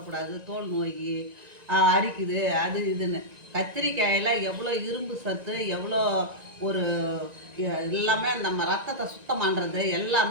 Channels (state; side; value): late; left; 1.9 ms